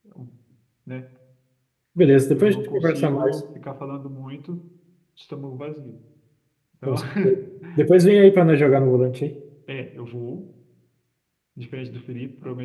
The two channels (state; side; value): identical; both; correlation 1.00